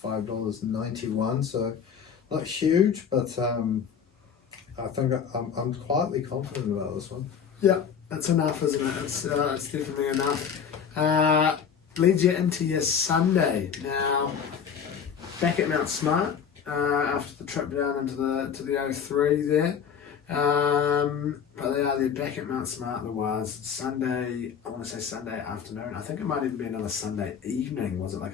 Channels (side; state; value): right; quieter; 7.3 dB